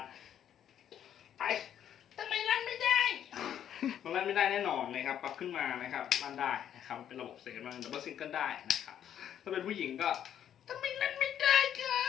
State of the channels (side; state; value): right; quieter; 9.9 dB